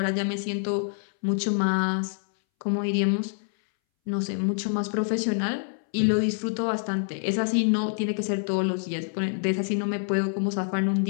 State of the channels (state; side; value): silent; right; 61 dB below the other